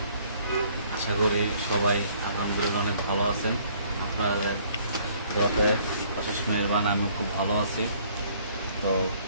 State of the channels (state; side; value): inverted; both; correlation -0.61